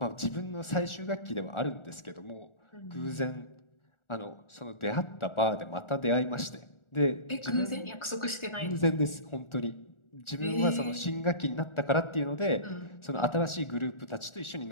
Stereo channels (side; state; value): right; late; 1.4 ms